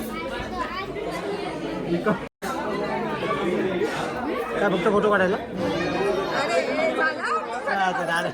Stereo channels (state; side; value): identical; both; correlation 1.00